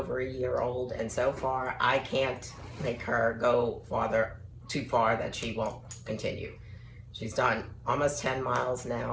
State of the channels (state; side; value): identical; both; correlation 1.00